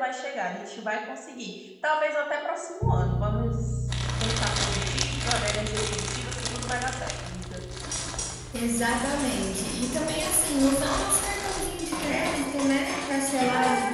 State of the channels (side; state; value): both; identical; correlation 1.00